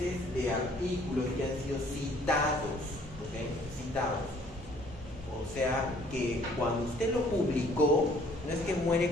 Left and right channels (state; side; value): normal; both; correlation 0.59